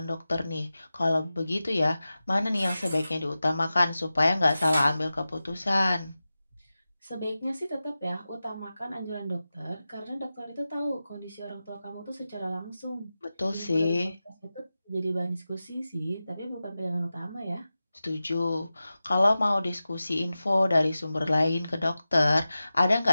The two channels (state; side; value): inverted; both; correlation -0.94